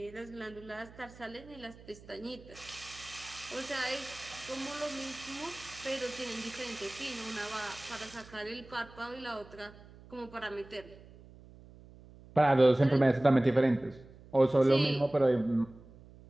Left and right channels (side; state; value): right; noise; hum, 21 dB below the sound